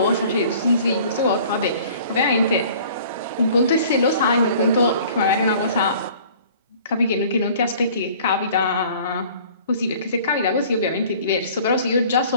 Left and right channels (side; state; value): both; inverted; correlation -0.50